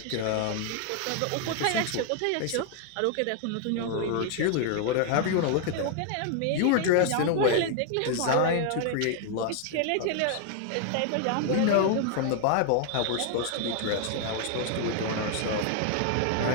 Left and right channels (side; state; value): both; different; correlation 0.00